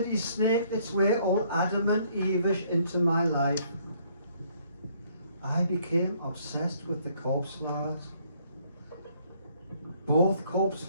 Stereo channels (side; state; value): both; inverted; correlation -0.65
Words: snaked its way all adamant Evish into my life. I became obsessed with the corpse flowers. Both corpse